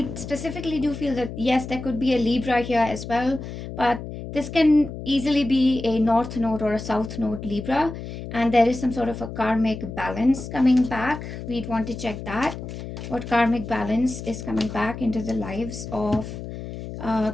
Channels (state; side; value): noise; left; hum, 9 dB below the sound